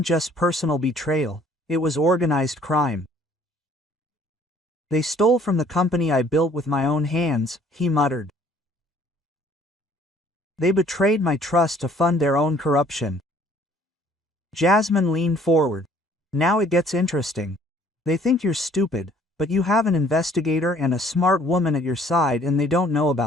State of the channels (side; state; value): both; normal; correlation 0.58